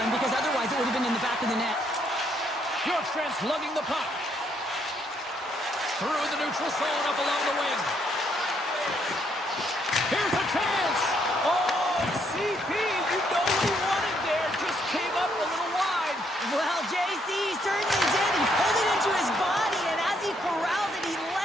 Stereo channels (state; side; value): normal; both; correlation 0.72